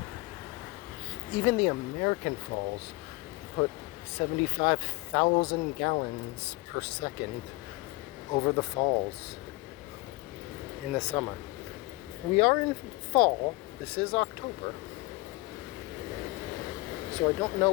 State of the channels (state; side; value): quieter; right; 23.7 dB